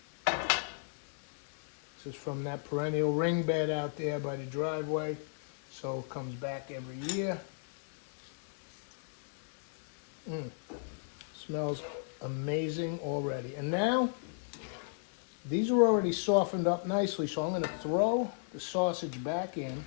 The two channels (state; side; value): silent; right; digital silence